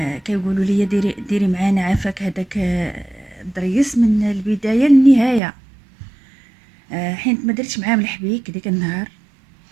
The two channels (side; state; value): left; drops out; at 5.4 s